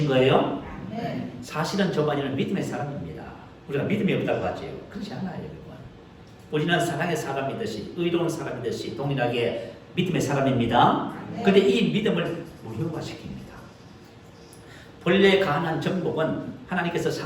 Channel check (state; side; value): identical; both; correlation 1.00